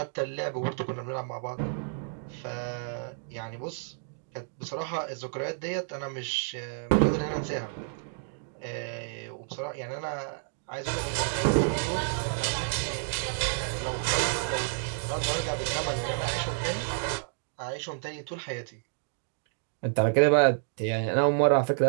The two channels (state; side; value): silent; left; digital silence